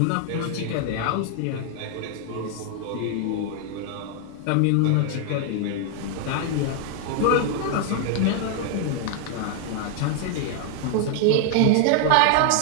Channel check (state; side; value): different; both; correlation 0.00